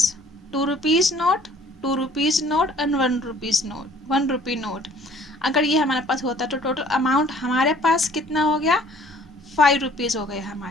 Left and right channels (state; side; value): normal; both; correlation 0.55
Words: 2 rupees note, 2 rupees note and 1 rupees note, 1 rupee note, अगर ये हमारे पास होता तो टोटल अमाउंट हमारे पास कितना हो गया? 5 रुपीज़ हो गए